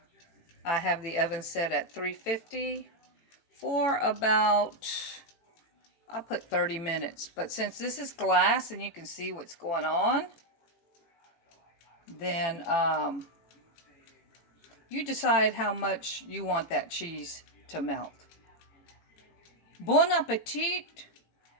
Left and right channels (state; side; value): late; right; 18 ms